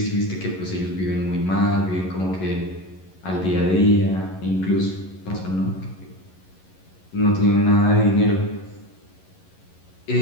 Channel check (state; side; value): late; right; 11 ms